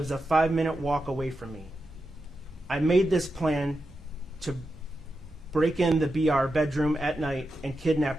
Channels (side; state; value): both; normal; correlation 0.88